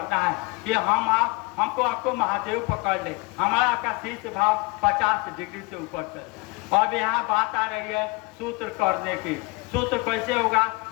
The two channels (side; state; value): right; quieter; 25.9 dB